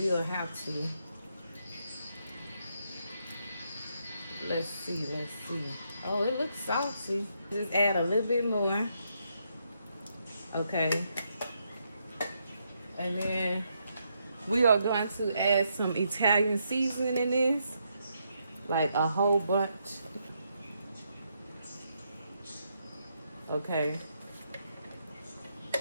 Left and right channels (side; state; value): both; inverted; correlation -0.78